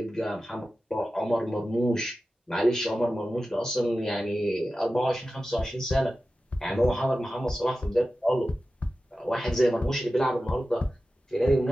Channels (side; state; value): both; normal; correlation 0.94